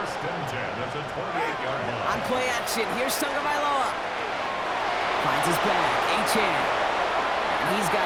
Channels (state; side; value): identical; both; correlation 1.00